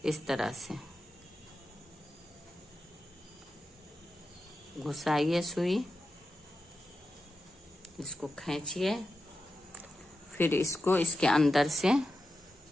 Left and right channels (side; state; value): both; normal; correlation 0.91